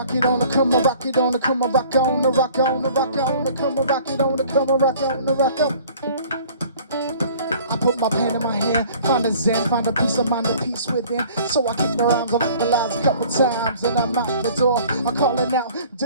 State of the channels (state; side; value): inverted; both; correlation -0.51